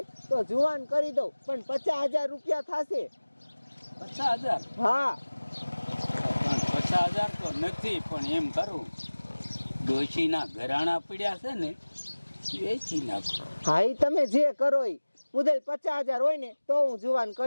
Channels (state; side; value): inverted; both; correlation -1.00